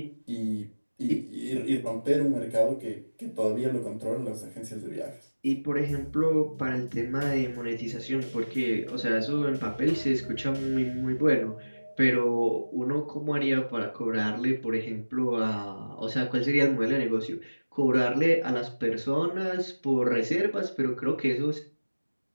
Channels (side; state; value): both; inverted; correlation -1.00